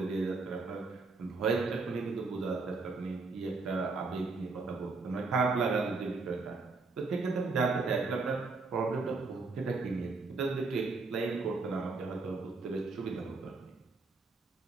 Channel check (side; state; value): left; quieter; 3.9 dB